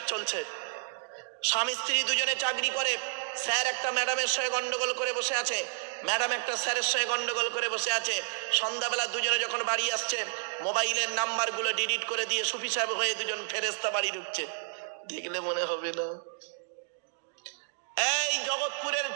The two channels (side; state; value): left; silent; digital silence